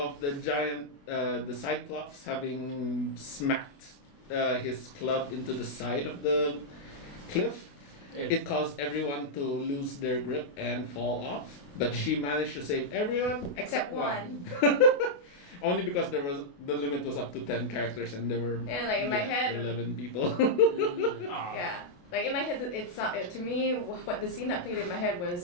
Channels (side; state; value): right; late; 28 ms